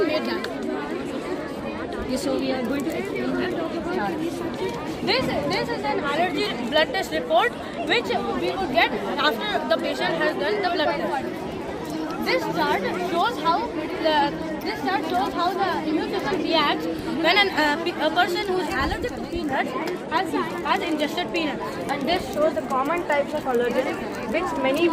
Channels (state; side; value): identical; both; correlation 1.00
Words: may die. Okay, so we are going to explain the chart. This is an allergy blood test report which we will get after the patient has done the blood test. This chart shows how the immune system reacts when a person who is allergic to peanuts has ingested peanuts. And this shows the common types of allergens which many